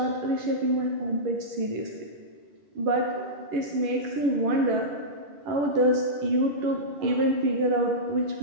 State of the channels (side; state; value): left; late; 11 ms